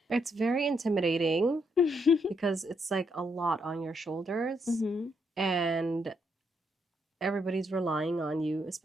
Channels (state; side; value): normal; both; correlation 0.76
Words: It's very intimidating because it's like a lot on your shoulders and everybody's relying on you,